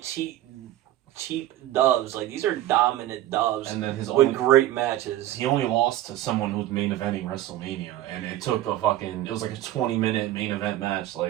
cheap dubs. Like these are dominant dubs. And then with great matches. He only lost to someone who's main eventing WrestleMania, and it took it was like a 20-minute main event match.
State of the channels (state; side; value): quieter; left; 13.9 dB